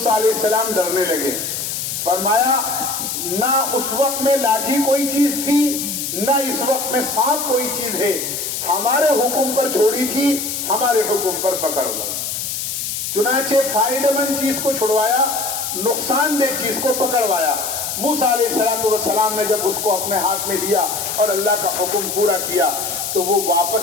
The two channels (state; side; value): noise; left; hiss, 4 dB below the sound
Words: علیہ السلام ڈرنے لگے۔ فرمایا نہ اس وقت میں لاٹھی کوئی چیز تھی، نہ اس وقت میں سانپ کوئی چیز ہے، ہمارے حکم پر چھوڑی تھی، ہمارے حکم پر پکڑ لو۔ چنانچہ فائدہ مند چیز کو چھڑوایا، نقصان دہ چیز کو پکڑوایا۔ موسیٰ علیہ السلام نے جب اس کو اپنے ہاتھ میں لیا اور اللہ کا حکم پورا کیا تو وہ